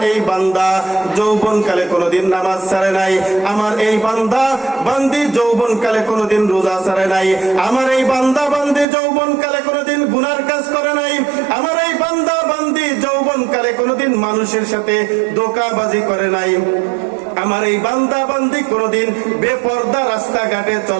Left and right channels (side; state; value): left; drops out; at 8.8 s